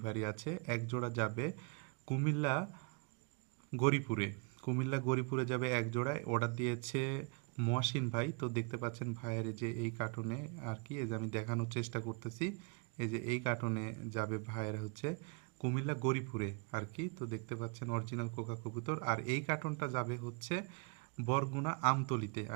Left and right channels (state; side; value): quieter; left; 31.2 dB